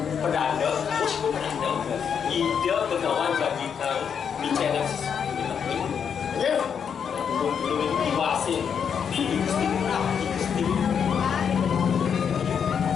pedanda, ide pegawai bagi kau bicara ya, belum diwasin,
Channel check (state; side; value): quieter; right; 7.3 dB